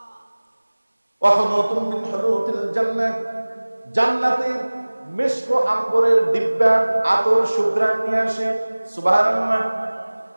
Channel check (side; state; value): both; inverted; correlation -1.00